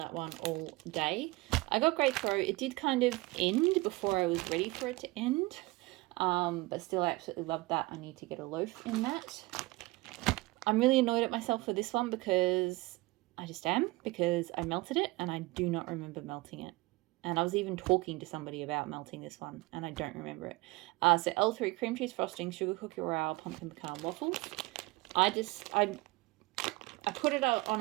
one all day. I got great throat. It did kind of end before I was ready for it to end. But still, I absolutely loved that. I need to get a loaf in that. I'm really annoyed at myself for this one because I just am, because I melted it and I do not remember melting it. And I was even talking to somebody about melting this one and I don't remember it. So L3 cream cheese frosting, sugar cookie royale, pumpkin pecan waffles. I put it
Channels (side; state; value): left; quieter; 22.2 dB